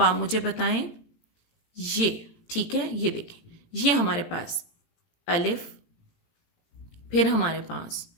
आप मुझे बताएं ये, ठीक है, ये देखें, ये हमारे पास अलिफ, फिर हमारे पास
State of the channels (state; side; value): late; right; 18 ms